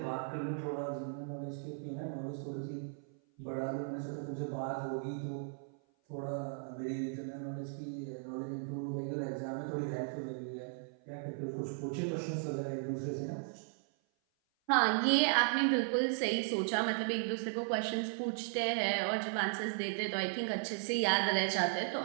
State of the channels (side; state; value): left; silent; 53 dB below the other